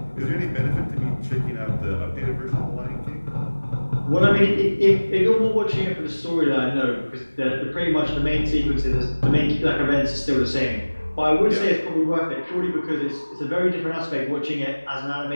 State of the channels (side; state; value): both; inverted; correlation -1.00